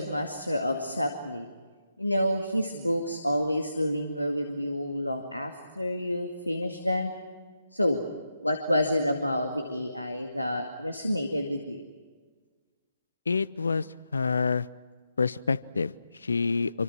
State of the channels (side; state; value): both; inverted; correlation -0.86